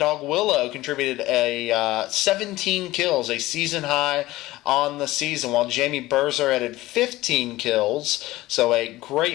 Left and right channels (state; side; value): quieter; right; 17.8 dB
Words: contributed a 17 kills, a season high on the season, while Jamie Berzer added 15 kills. So a